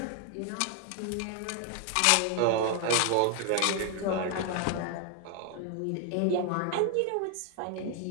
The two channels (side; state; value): both; different; correlation 0.00